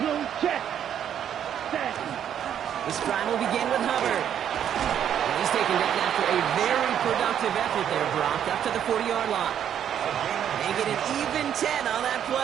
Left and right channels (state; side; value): quieter; left; 9.5 dB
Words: check. Set. This drive will begin with Hubbard. And he He's taken down after a very productive effort there, Brock, up to the 40-yard line. They get an even 10 on that